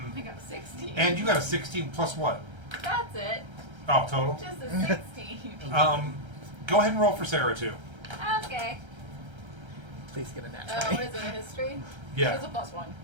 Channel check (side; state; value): left; late; 1.3 ms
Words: got a 16. And you got a 16 plus what? That's it. Oh, total? Just a 16. Go ahead and roll for Sarah, too. Okay. Please get a nat What 20. is it, a history? Yeah. It's a +1.